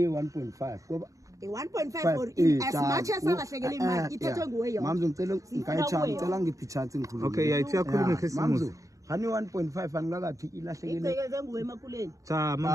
1.5 ngoba 1.5 or as much as alahlekele imali ithethwe nguwe yona mama ngicela ngicela ngiphi chance ngikhuluma okay yayithi yakhuluma ngesimuzi hani 1.5 angilakathi ilahlekele icekeze nguwe emakuleni cha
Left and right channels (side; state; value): left; late; 0.16 ms